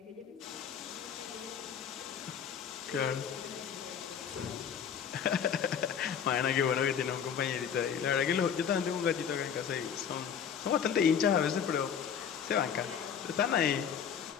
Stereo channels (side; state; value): right; quieter; 7.8 dB